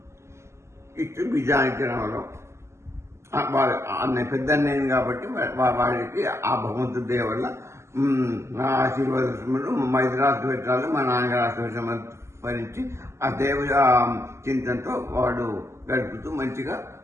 ఇటు బిజానికి రావడం పెద్ద అన్నయ్య కాబట్టి వాడికి ఆ భగవంతుడి దయ వల్ల నా ఆశీర్వాదములు మా ఇద్దరు ఆశీర్వచనాలు, మా నాన్నగారు ఆశీర్వచనాలు భరించి ఆ దేవ చింతనతో వాడు గడుపుతూ మంచిగా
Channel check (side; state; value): left; late; 0.13 ms